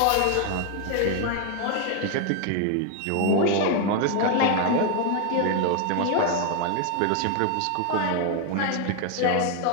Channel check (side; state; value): both; different; correlation 0.01